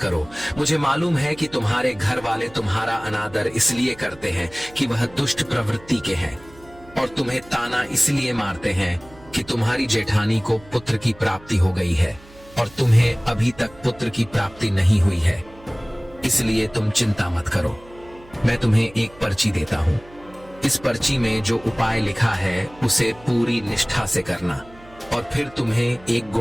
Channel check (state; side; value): noise; right; hum, 23 dB below the sound